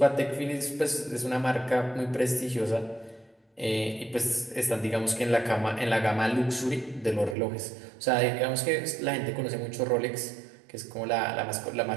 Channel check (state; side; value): drops out; left; at 7.4 s